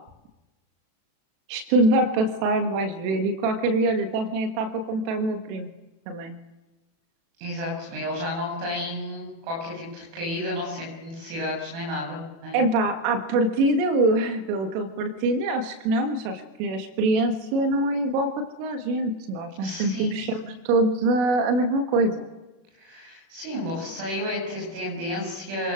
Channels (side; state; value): left; late; 36 ms